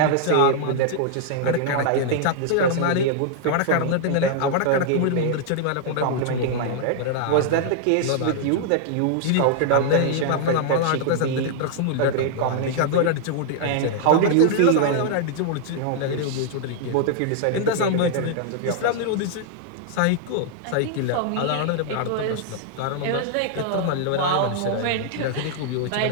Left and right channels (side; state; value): both; different; correlation 0.00